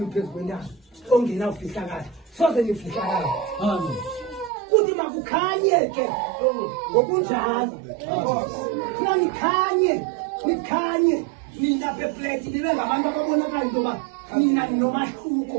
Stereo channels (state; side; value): drops out; left; at 4.5 s